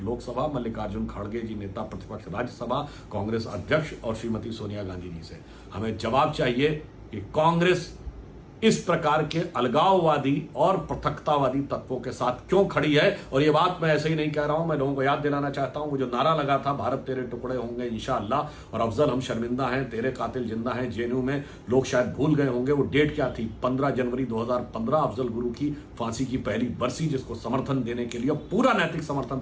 मल्लिकार्जुन खड़गे जी नेता प्रतिपक्ष राज्यसभा, कांग्रेस अध्यक्ष और श्रीमती सोनिया गांधी जी से हमें जवाब चाहिए कि कांग्रेस इस प्रकार के अलगाववादी और पृथकतावादी तत्वों के साथ क्यों खड़ी है। और ये बात मैं ऐसे ही नहीं कह रहा हूं, मैं लोगों को याद दिलाना चाहता हूं, वो जो नारा लगा था भारत तेरे टुकड़े होंगे इंशाअल्लाह, और अफजल हम शर्मिंदा हैं, तेरे कातिल जिंदा हैं, जेएनयू में लोग शायद भूल गए होंगे वो डेट क्या थी, 15 जनवरी 2015 अफजल गुरु की फांसी की पहली बरसी, जिसको समर्थन देने के लिए पूरा नैतिक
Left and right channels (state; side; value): identical; both; correlation 1.00